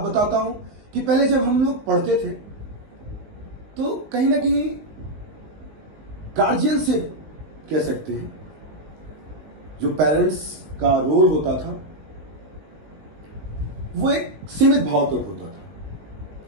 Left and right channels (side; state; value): left; late; 19 ms